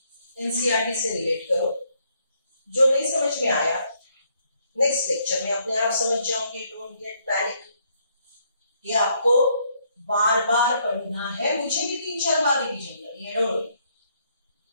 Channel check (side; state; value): both; inverted; correlation -0.71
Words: एनसीईआरटी से रिलेट करो। जो नहीं समझ में आया नेक्स्ट लेक्चर में अपने आप समझ जाओगे। Don't get panic. ये आपको बार बार पढ़ना है, मुझे भी 3-4 बार रिवीजन करनी है, don't worry.